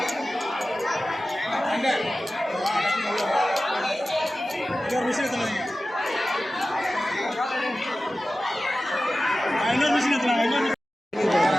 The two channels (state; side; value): normal; both; correlation 0.95